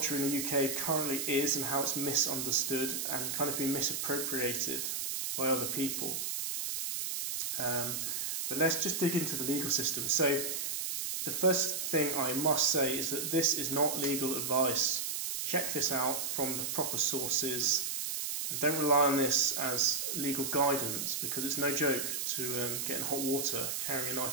in the UK currently is and how it's misunderstood and kind of been misappropriated by other people. But let's just dig into the legal system. So the first thing I must say is that this is not legal advice. Check this out from the proper sources and don't rely on this as legal guidance, because it's no joke to get in hot water carrying a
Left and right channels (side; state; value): right; noise; hiss, 2 dB below the sound